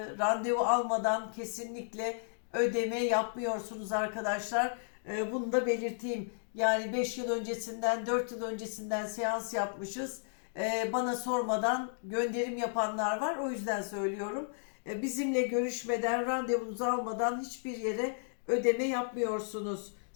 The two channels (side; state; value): right; silent; digital silence